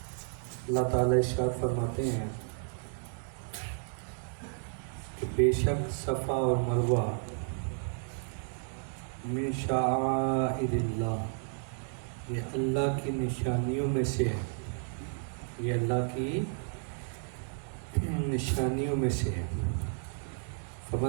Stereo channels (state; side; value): silent; left; 56 dB below the other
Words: اللہ تعالیٰ ارشاد فرماتے ہیں کہ بے شک صفا اور مروہ من شعائر اللہ، یہ اللہ کی نشانیوں میں سے ہے، یہ اللہ کی نشانیوں میں سے ہے۔